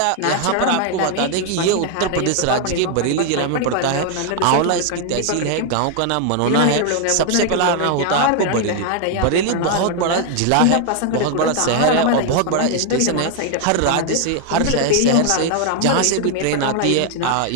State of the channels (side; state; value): both; different; correlation 0.00